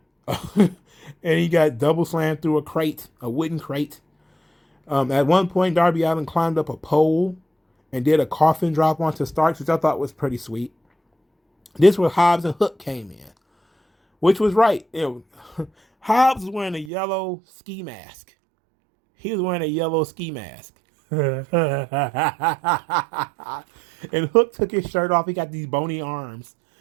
And he got double slammed through a wooden crate. At one point, Darby Allin climbed up a pole and did a coffin drop onto Starks, which I thought was pretty sweet. This was Hobbs and Hook came in, which was right. Hobbs was wearing a yellow ski mask. He was wearing a yellow ski mask. And Hook took his shirt off. He got these bony arms.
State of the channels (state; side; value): drops out; left; at 16.9 s